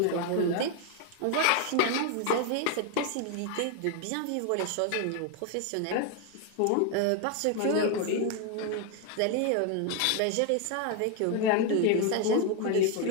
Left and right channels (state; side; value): different; both; correlation 0.01